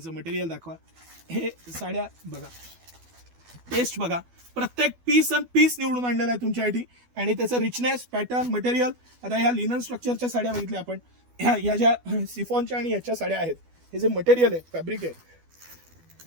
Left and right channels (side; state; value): left; late; 12 ms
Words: मटेरियल दाखवा. हे साड्या बघा, टेस्ट बघा, प्रत्येक पीस अन पीस निवडून आणलेला आहे तुमच्यासाठी, आणि त्याचं रिचनेस, पॅटर्न, मटेरियल. आता ह्या लिनन स्ट्रक्चरच्या साड्या बघितल्या आपण, ह्या ज्या सिफॉनच्या आणि ह्याच्या साड्या आहेत, हे जे मटेरियल आहे, फॅब्रिक आहे,